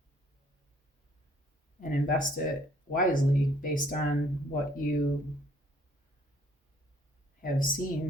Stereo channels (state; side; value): normal; both; correlation 0.62